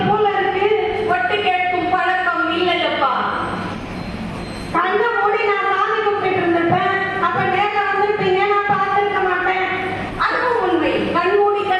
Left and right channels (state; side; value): identical; both; correlation 1.00